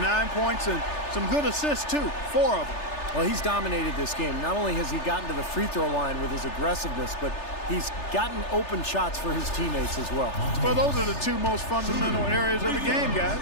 points and some good assists, too. 4 of them. Well, he's dominated this game. Not only has he gotten to the free throw line with his aggressiveness, but he's gotten open shots for his teammates as well. Well, those are the 2 most fundamental areas of the game, guys.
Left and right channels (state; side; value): late; right; 3.3 ms